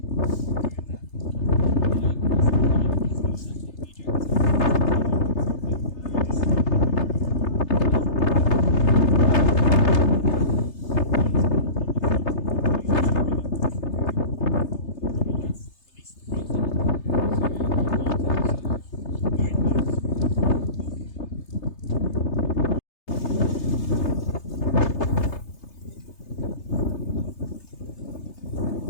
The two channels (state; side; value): late; right; 3.3 ms